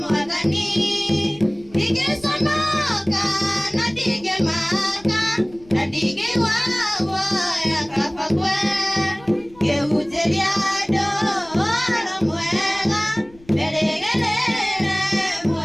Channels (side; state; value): left; noise; rumble, 25 dB below the sound